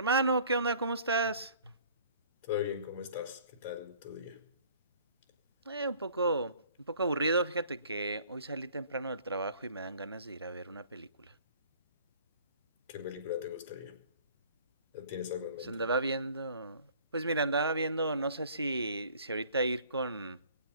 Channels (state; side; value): inverted; both; correlation -0.52